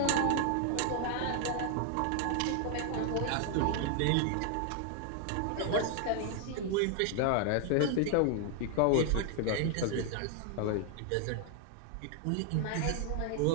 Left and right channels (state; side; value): different; both; correlation 0.00